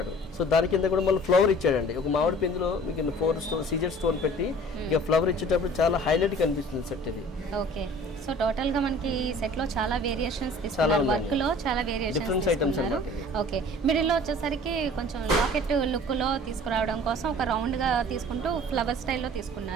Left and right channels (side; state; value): both; normal; correlation 0.47